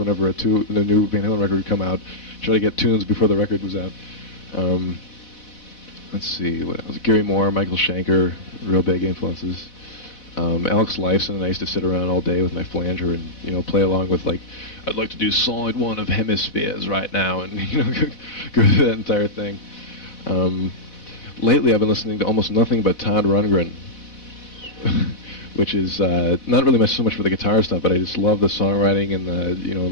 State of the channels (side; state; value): right; late; 4.1 ms